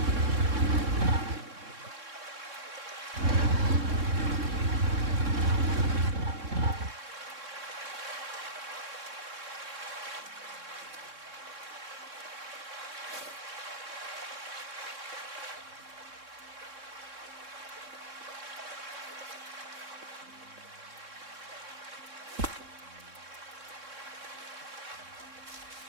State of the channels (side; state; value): left; late; 3.6 ms